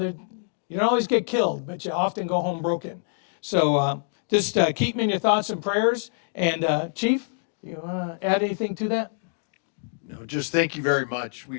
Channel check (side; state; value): right; silent; digital silence